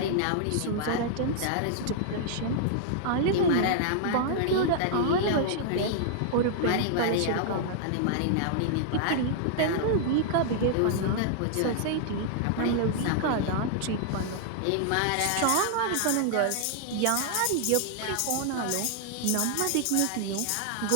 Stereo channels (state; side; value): different; both; correlation -0.01